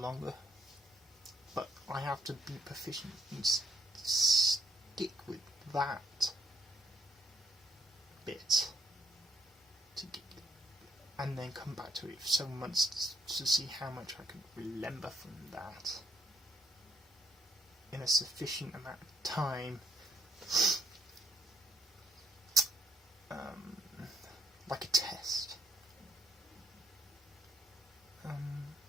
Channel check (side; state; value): both; normal; correlation 0.71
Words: But I have to be proficient and stick with that bit to get, and then come back to it for several months to see how much I could remember from that in a sufficient amount of time. Like a test.